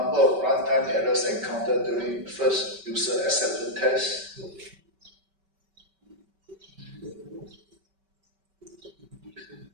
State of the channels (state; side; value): late; left; 5.2 ms